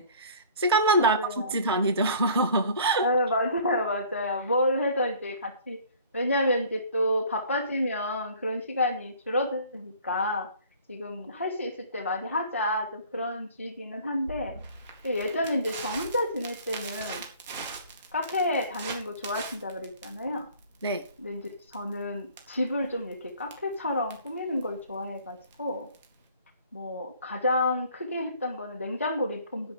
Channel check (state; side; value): inverted; both; correlation -0.50